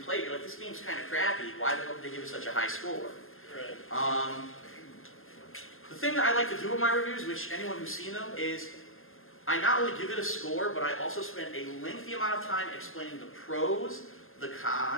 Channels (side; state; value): right; late; 0.60 ms